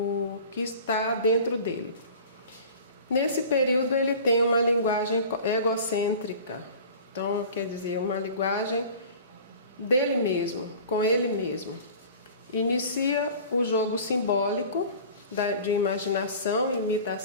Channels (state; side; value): inverted; both; correlation -0.41